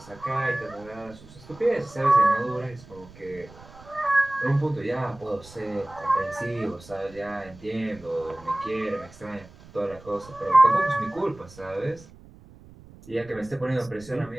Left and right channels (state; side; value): noise; right; rumble, 21 dB below the sound